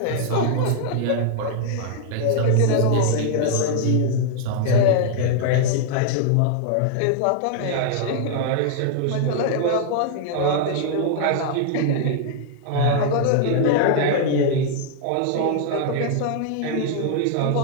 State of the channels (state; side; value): different; both; correlation 0.00